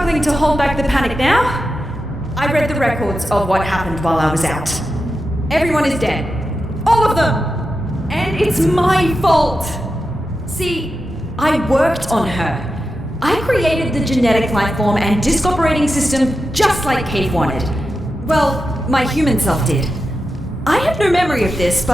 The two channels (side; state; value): both; normal; correlation 0.90